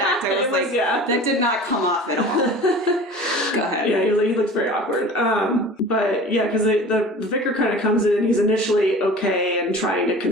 I was like, that did not come off at all. Go ahead. Yeah, he looks very awkward. But yeah, because the vicar kind of comes in and he's initially okay and trying to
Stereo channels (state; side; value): normal; both; correlation 0.41